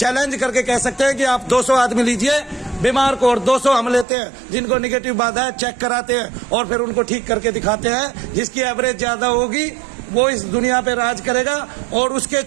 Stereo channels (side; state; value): left; drops out; at 4.0 s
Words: करके कह सकते हैं कि आप 200 आदमी लीजिए बीमार को, और 200 हम लेते हैं जिनको निगेटिव बाधा है, चेक कराते हैं और फिर उनको ठीक करके दिखाते हैं। जिसकी एवरेज ज्यादा होगी वो इस दुनिया पे राज करेगा, और उसके